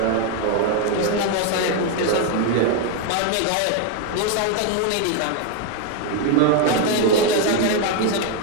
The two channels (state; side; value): different; both; correlation 0.01